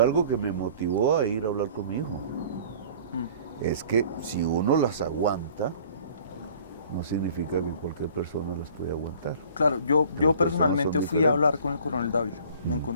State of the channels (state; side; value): inverted; both; correlation -0.50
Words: algo que me motivó a ir a hablar con mi hijo. Es que si uno las aguanta, no significa que cualquier persona las puede aguantar. Claro, yo Las personas personalmente son fui a diferentes. hablar con el coronel Dávila. Me